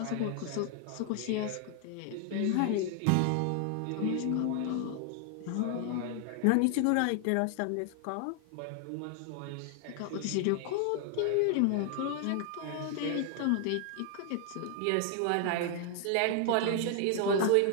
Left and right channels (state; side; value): different; both; correlation 0.00